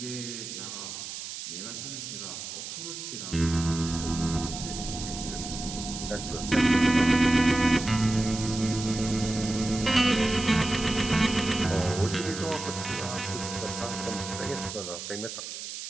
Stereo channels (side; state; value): right; noise; hiss, 8 dB below the sound